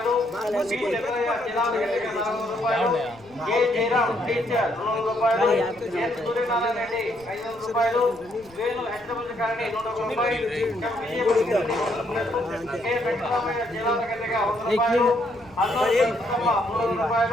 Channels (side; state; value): left; noise; rumble, 25 dB below the sound